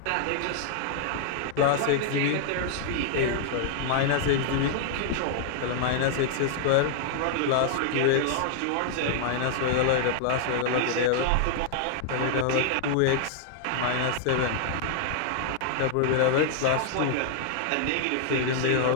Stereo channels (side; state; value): both; different; correlation -0.01